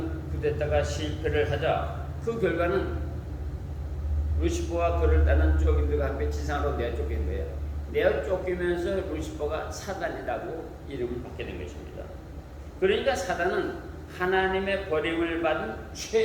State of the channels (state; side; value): identical; both; correlation 1.00